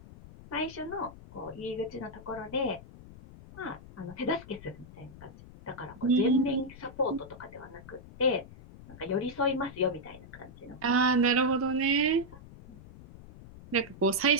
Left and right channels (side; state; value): left; noise; rumble, 18 dB below the sound